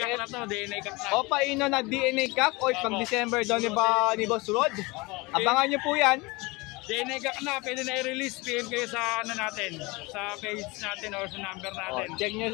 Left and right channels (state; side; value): quieter; right; 24.7 dB